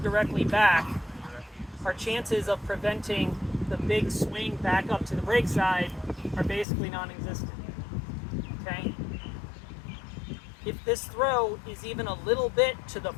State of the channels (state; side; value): drops out; right; at 6.7 s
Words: back, our chances of preventing the big swing back up to the break side are basically non-existent. Okay? If this throw is even a little bit to the